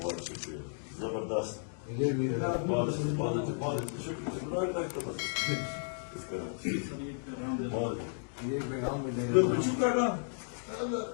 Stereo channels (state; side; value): silent; right; digital silence